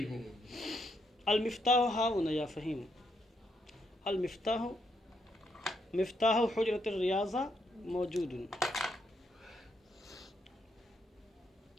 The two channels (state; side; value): normal; both; correlation 0.77